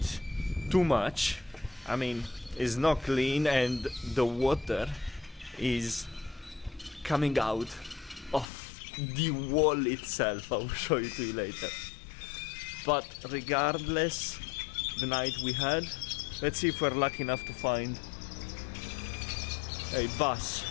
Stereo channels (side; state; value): right; drops out; at 8.5 s